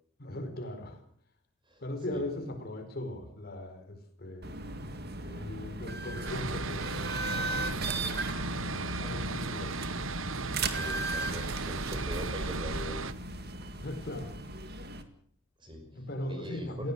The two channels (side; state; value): both; normal; correlation 0.36